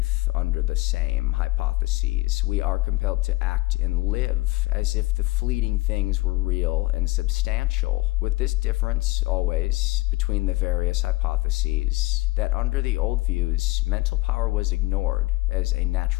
under the same hypotheses. We are compelled to act and live as if the fleeting things were real and substantial, with this difference always between the various hypotheses that under the old views, mental power was ignored as a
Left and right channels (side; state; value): right; quieter; 20.7 dB